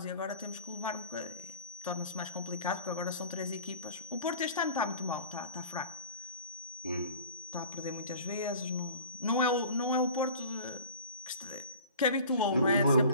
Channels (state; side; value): inverted; both; correlation -0.43